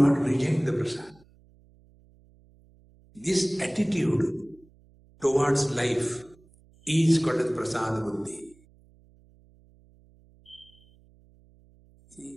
reject the prasad. This attitude towards life is called as prasad buddhi. See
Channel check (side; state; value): right; noise; hum, 29 dB below the sound